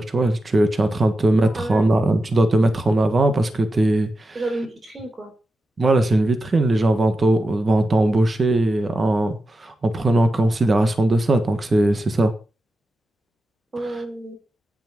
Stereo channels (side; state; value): both; normal; correlation 0.91